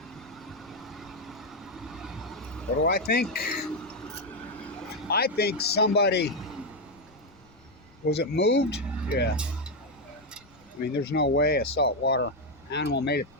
What do I think? I think somebody, was it moved? Yeah. I mean, there's no way a saltwater animal made it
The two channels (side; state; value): left; noise; rumble, 28 dB below the sound